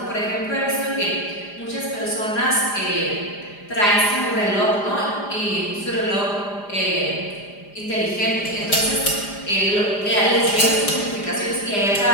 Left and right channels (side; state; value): right; late; 4.9 ms